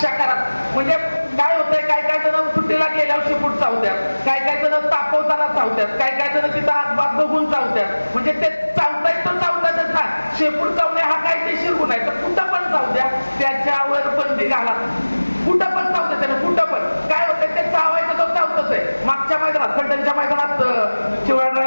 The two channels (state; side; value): inverted; both; correlation -1.00